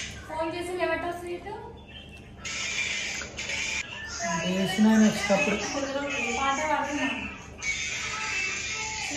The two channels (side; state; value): both; identical; correlation 1.00